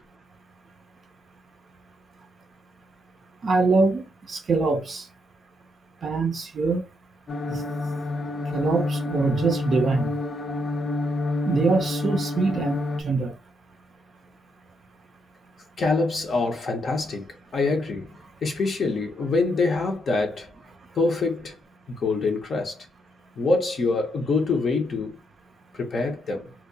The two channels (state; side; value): normal; both; correlation 0.77